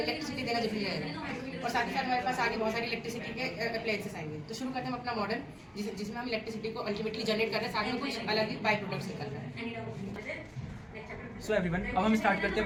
देना जरूरी रहेगा। और साथ ही साथ हमारे पास आगे बहुत सारी इलेक्ट्रिसिटी के अप्लायंसेस आएंगे। तो शुरू करते हैं हम अपना मॉडल जिसमें हम इलेक्ट्रिसिटी को अल्टीमेटली जनरेट कर रहे हैं, साथ में कुछ अलग ही बाई प्रोडक्ट्स निकल रहे हैं। सो एवरीवन, अब हम स्टार्ट करते हैं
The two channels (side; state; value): both; identical; correlation 1.00